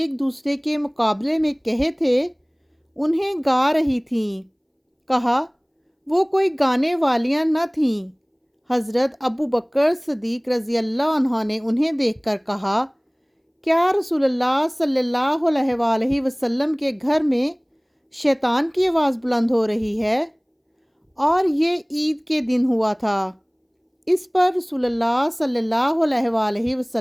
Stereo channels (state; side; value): identical; both; correlation 1.00